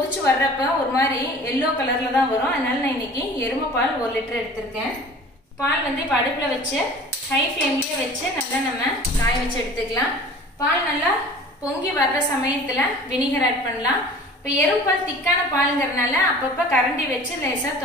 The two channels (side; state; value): both; normal; correlation 0.44